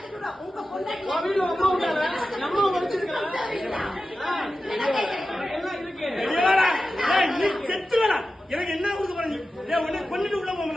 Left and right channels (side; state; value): both; normal; correlation 0.93